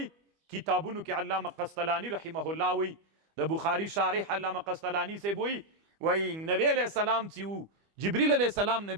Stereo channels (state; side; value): late; left; 25 ms